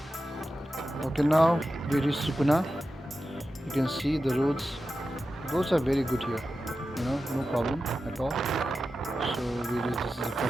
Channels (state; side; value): normal; both; correlation 0.92